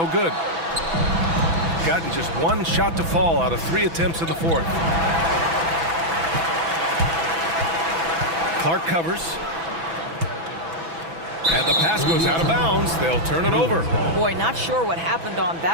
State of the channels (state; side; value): late; left; 6.0 ms